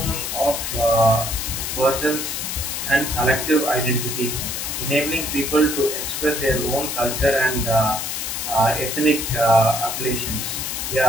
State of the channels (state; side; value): noise; left; hiss, 3 dB below the sound